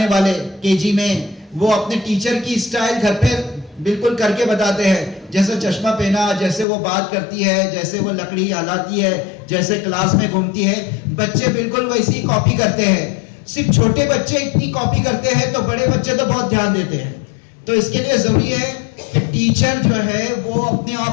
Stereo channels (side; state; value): right; drops out; at 6.7 s